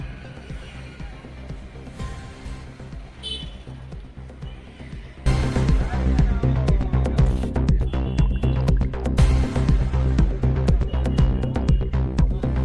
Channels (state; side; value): identical; both; correlation 1.00